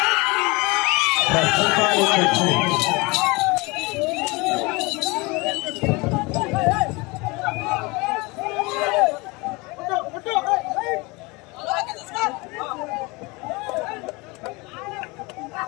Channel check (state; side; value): quieter; right; 25.6 dB